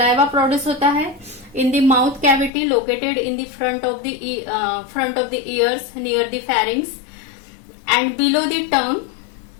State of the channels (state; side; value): drops out; right; at 2.5 s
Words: प्रोड्यूस होता है in the mouth cavity located in the front of the years near the फैरिंग्स and below the